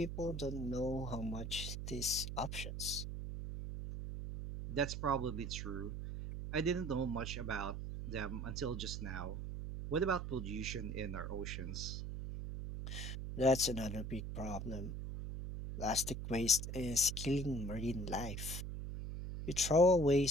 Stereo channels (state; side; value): noise; right; hum, 5 dB below the sound